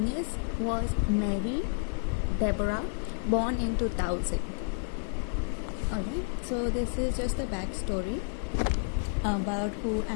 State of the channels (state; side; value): silent; right; digital silence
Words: was Mary Deborah, born in 2000. Alright, so this is just a backstory about who